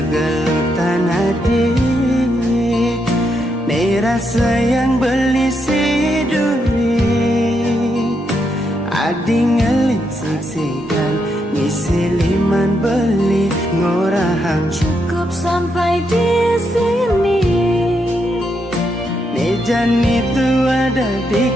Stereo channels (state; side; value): normal; both; correlation 0.80